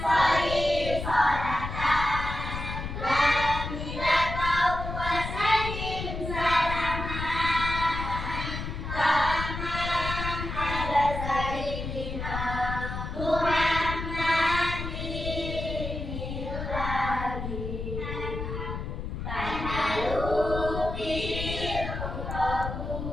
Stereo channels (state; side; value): noise; left; rumble, 6 dB below the sound